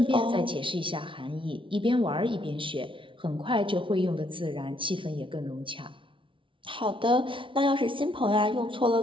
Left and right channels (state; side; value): late; left; 0.25 ms